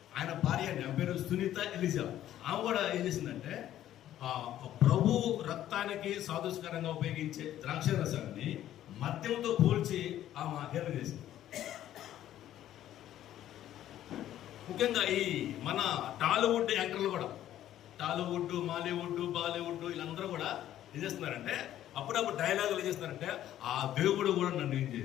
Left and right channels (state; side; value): quieter; right; 12.3 dB